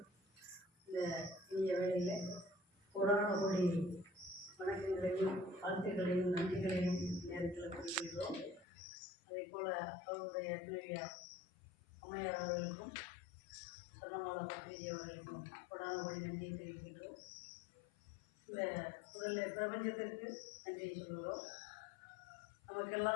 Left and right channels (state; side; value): drops out; right; at 8.7 s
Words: இந்த இனிய வேளையில் கொரோனா கோடி வணக்கங்களையும் வாழ்த்துக்களையும் நன்றிகளையும் நேரத்தில் குறிப்பிடுகிறோம். அதே போல் அவருடைய துணைவியா அம்மையார் அவர்களுக்கும் சொன்னமாலா பத்திரிகை அவர்களுக்கும் கொரோனா கோடி நன்றியை தெரிவிக்கின்றோம். இந்த முதல்ல பிரபஞ்சத்திற்கு நன்றியை சொல்கிறோம்.